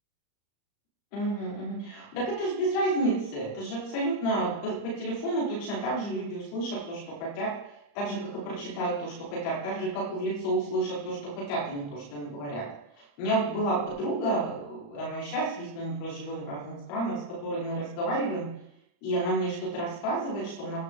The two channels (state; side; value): late; right; 35 ms